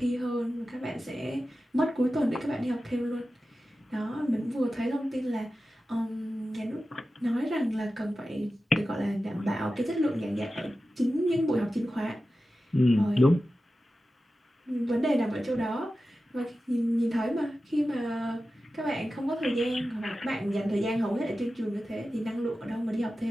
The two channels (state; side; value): normal; both; correlation 0.94